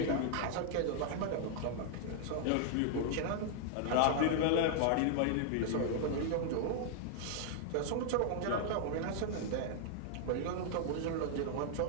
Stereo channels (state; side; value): different; both; correlation -0.01